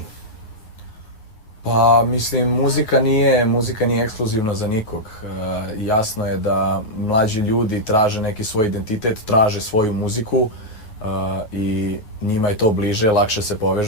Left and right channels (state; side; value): late; right; 9.4 ms